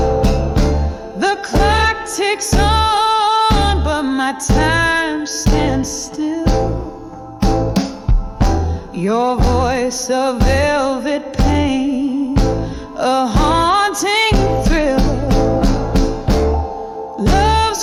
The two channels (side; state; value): both; identical; correlation 1.00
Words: The clock ticks on, but my time stands still. Your voice, a velvet pain, a haunting thrill.